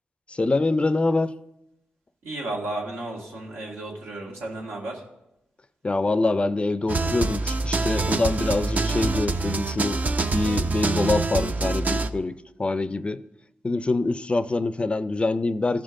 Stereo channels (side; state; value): both; normal; correlation 0.86